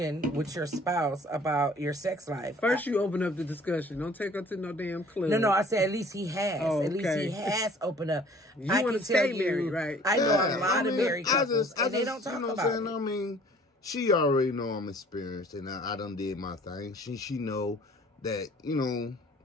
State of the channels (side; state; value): both; normal; correlation 0.53